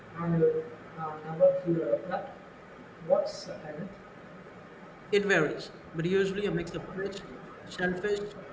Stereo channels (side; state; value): both; identical; correlation 1.00